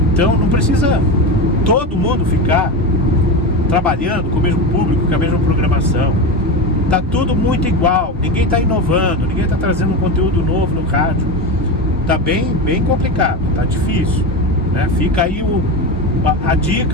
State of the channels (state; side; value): normal; both; correlation 0.20